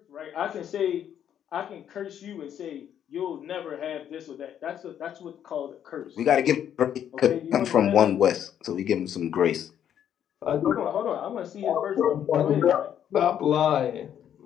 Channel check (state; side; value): quieter; right; 9.7 dB